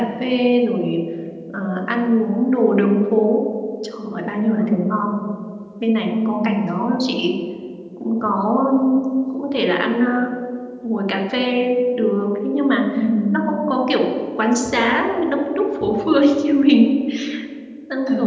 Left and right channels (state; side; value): identical; both; correlation 1.00